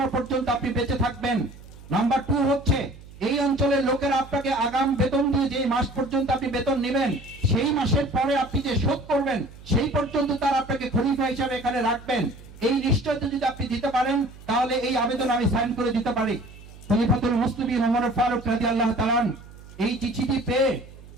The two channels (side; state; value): right; noise; hum, 19 dB below the sound